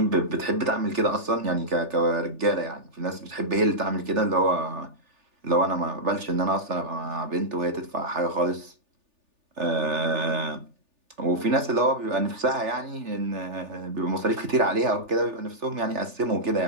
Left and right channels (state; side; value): late; left; 3.4 ms